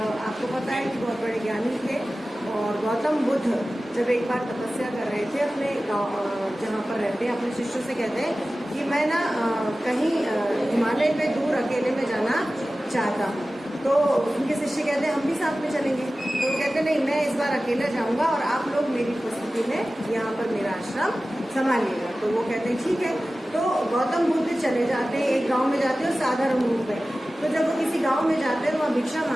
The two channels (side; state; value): both; normal; correlation 0.96